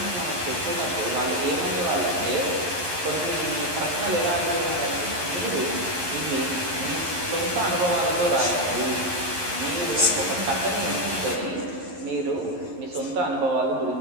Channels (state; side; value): late; left; 11 ms